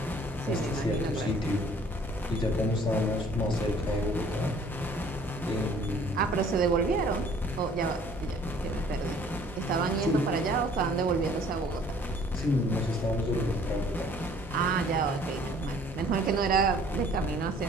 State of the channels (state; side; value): normal; both; correlation 0.55